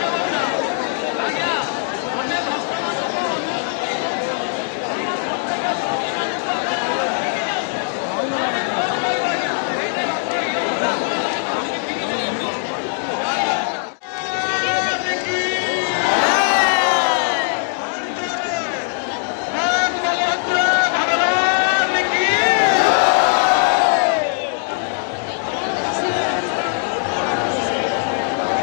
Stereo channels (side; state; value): right; silent; 66 dB below the other